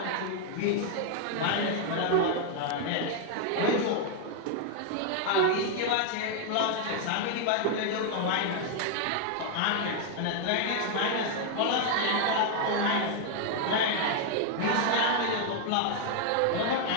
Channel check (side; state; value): both; different; correlation 0.00